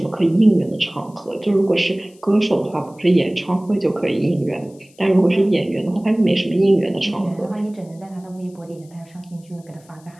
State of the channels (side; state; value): left; noise; hiss, 29 dB below the sound